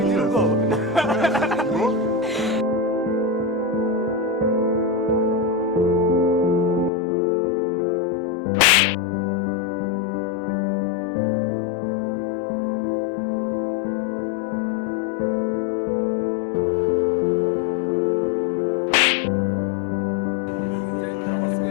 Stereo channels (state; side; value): drops out; right; at 6.9 s